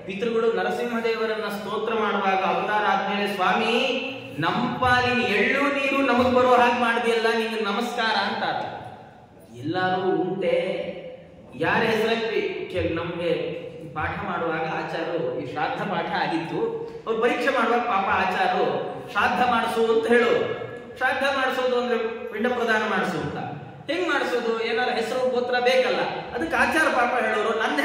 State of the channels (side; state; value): both; identical; correlation 1.00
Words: ಪಿತೃಗಳು ನರಸಿಂಹದೇವರನ್ನ ಸ್ತೋತ್ರ ಮಾಡುವಾಗ ಅವತಾರ ಆದ್ಮೇಲೆ, ಸ್ವಾಮಿ ನಮ್ಮ ಪಾಲಿನ ಎಳ್ಳು ನೀರು ನಮಗ್ ಬರೋ ಹಾಗೆ ಮಾಡಿದೆಯಲ್ಲ, ನಿಮ್ಗೆ ನಮಸ್ಕಾರ ಅಂತಾರೆ. ಎಲ್ಲರೂ ಉಂಟೆ ಯಾರ ಹೆಸರಲ್ಲಿ ನಮ್ಗೆ ಪಾಠ ಮಾಡುವಾಗ ಆಚಾರ್ಯರು ಈ ಶ್ರಾದ್ದ ಪಾಠ ಆಗಿತ್ತು. ಅವ್ರು ಪರೀಕ್ಷೆ ಮಾಡುವಾಗ ಪಾಪ ಆಚಾರ್ಯರು ಶ್ರಾದ್ದ ಮಾಡಿಸು ಅಂತ ಹೇಳೋರು. ಶ್ರಾದ್ದ ಮಾಡಿಸೋದು ಅಂದ್ರೆ ಪಿಂಡ ಪ್ರದಾನ ಮಾಡಿಸು ಅಂತ. ಹೆಂಗ್ ಮಾಡಿಸೋದು? ಏನಾರ ಹೆಸರು ಗೋತ್ರ ಬೇಕಲ್ಲ. ಅದಕ್ಕೆ ಆಚಾರ ಪಾಪ ಹೇಳೋರು ನನ್ನ